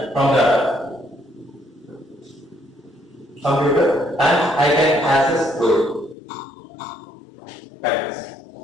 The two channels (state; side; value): drops out; right; at 6.2 s